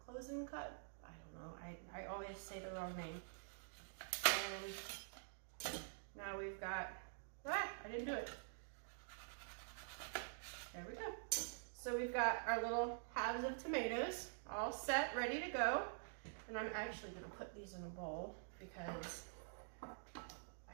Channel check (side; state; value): left; silent; digital silence